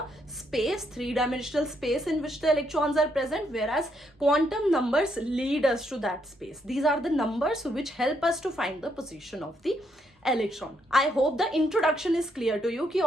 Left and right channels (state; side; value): normal; both; correlation 0.75